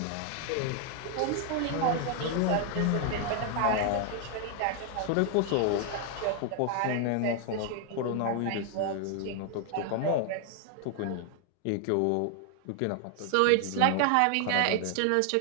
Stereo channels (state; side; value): different; both; correlation 0.00